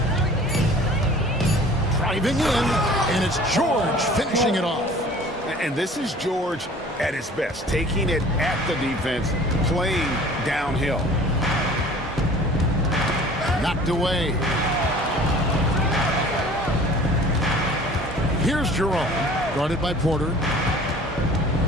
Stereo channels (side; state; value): both; normal; correlation 0.47